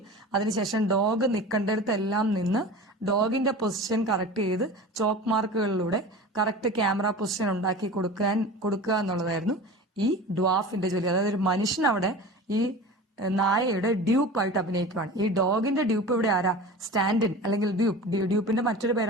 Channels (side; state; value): both; normal; correlation 0.35